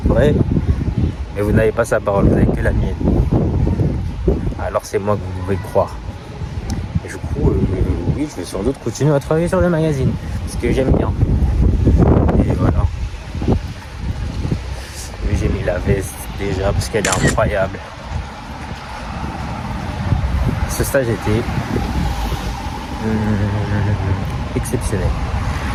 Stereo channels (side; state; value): both; identical; correlation 1.00